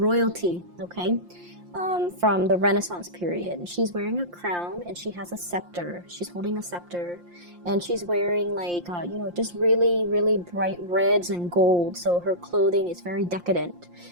okay, from the Renaissance period. She's wearing a crown and she has a scepter. She's holding a scepter, and she's wearing like just really bright reds and gold. So her clothing is very decadent.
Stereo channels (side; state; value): left; late; 5.7 ms